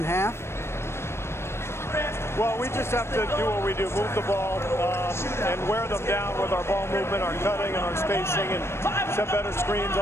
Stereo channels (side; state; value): right; late; 0.12 ms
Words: half? Well, we just have to do what we do, move the ball and wear them down with our ball movement, our cutting, and our spacing, and set better screens,